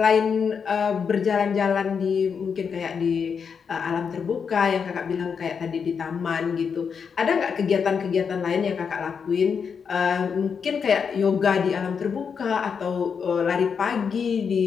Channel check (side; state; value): right; quieter; 6.4 dB